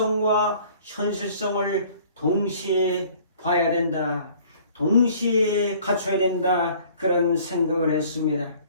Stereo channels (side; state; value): both; inverted; correlation -0.53